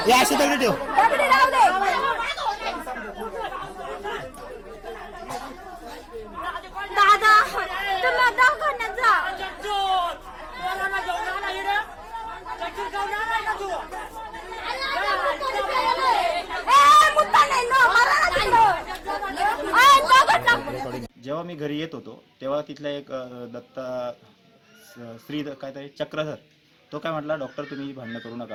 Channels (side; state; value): both; identical; correlation 1.00